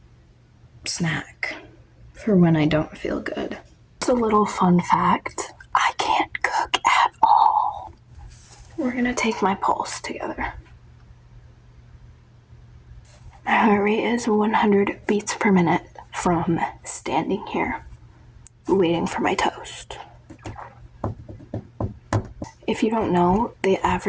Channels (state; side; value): identical; both; correlation 1.00